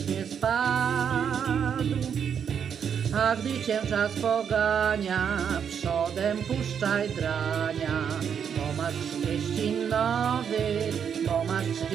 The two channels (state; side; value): quieter; left; 7.7 dB